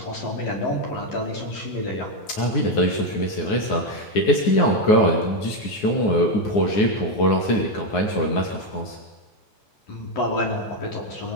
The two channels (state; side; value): late; right; 9.6 ms